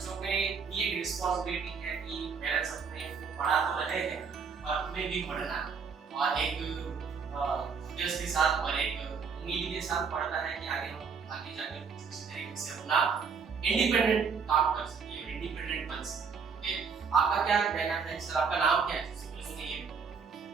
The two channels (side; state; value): left; quieter; 5.8 dB